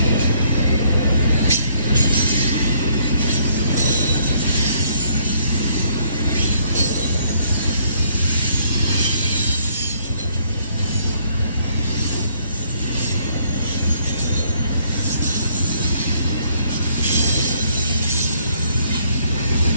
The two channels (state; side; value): inverted; both; correlation -0.66